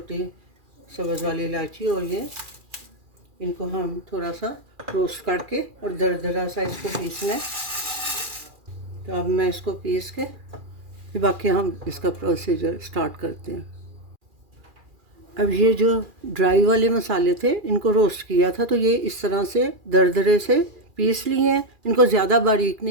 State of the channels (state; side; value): late; left; 2.4 ms